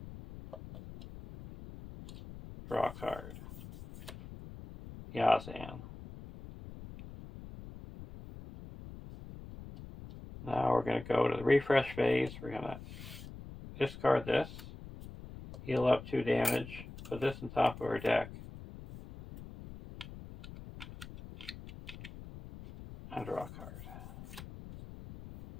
Draw a card. Yazan. Now we're going to go to the refresh phase. We're going to discard this. Heal up 2 damage. Put this on top of our deck. And draw a card.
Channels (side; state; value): left; noise; rumble, 14 dB below the sound